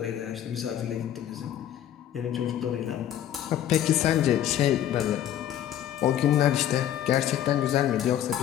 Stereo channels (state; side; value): quieter; right; 11.2 dB